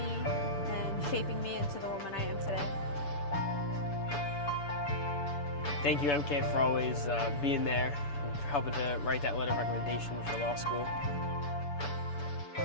and shaping me into the woman I am today. Thank you, MK, for always being there and for helping to write that letter of recommendation for law school.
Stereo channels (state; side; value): late; right; 7.0 ms